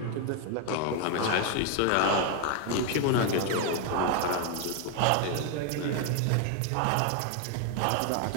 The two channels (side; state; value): both; different; correlation 0.01